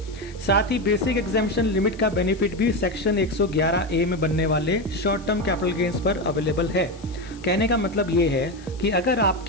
साथ ही बेसिक एग्जेम्पशन लिमिट का बेनिफिट भी सेक्शन 111A में बनने वाले शॉर्ट टर्म कैपिटल गेन्स पर अवेलेबल है। कहने का मतलब ये है कि अगर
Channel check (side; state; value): left; noise; hiss, 24 dB below the sound